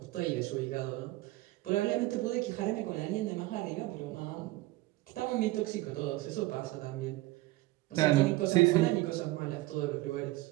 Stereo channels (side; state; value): left; quieter; 19.1 dB